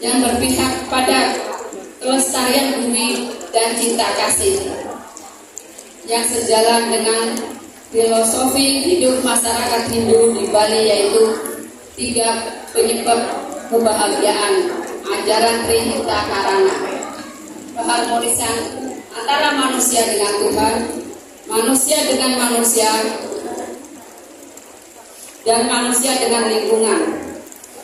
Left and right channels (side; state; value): both; identical; correlation 1.00